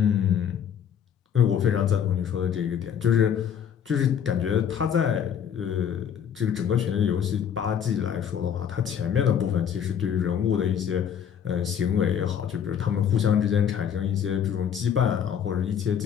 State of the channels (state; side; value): quieter; right; 8.4 dB